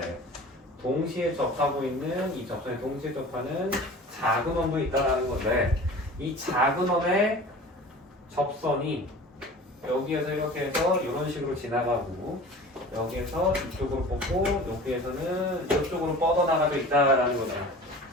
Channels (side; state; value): both; normal; correlation 0.40